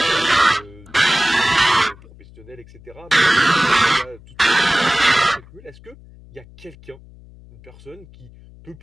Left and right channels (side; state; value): left; noise; hum, 22 dB below the sound